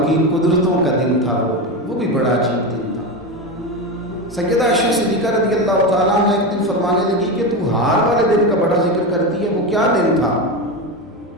کی قدرتوں کا دن تھا، وہ بھی بڑا عجیب دن تھا۔ سیدہ عائشہ صدیقہ رضی اللہ تعالیٰ عنہ ایک دن فرمانے لگی کہ تو ہار والے دن کا بڑا ذکر کرتی ہے، وہ کیا دن تھا؟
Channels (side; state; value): both; normal; correlation 0.17